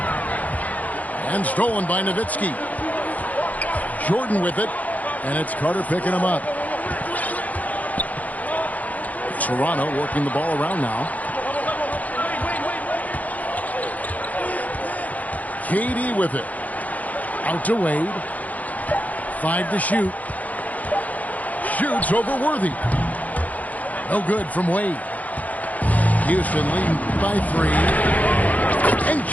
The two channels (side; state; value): right; late; 0.075 ms